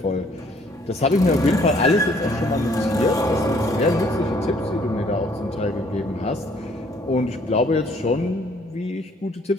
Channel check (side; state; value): both; normal; correlation 0.62